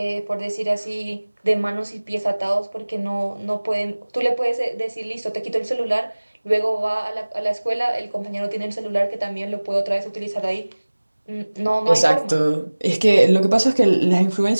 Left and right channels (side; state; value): both; inverted; correlation -1.00